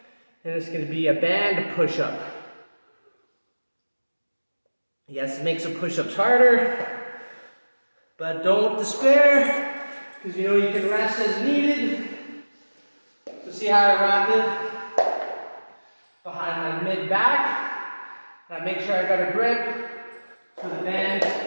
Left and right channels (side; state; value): both; inverted; correlation -1.00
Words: And it's going to be a band push-up. Yes, it makes some push-ups harder. But don't despair, because you know you can rest as needed. So see how I wrap it behind my mid-back. And I make sure I got a grip so the band